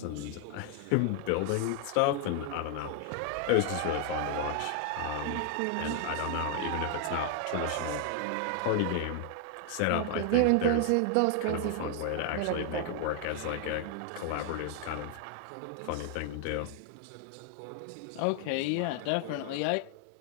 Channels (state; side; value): different; both; correlation 0.00